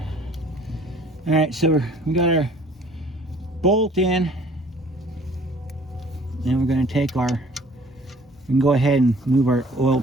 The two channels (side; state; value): both; normal; correlation 0.54